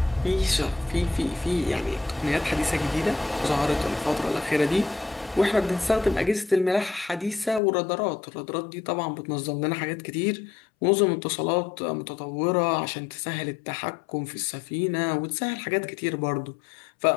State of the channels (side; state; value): right; drops out; at 7.6 s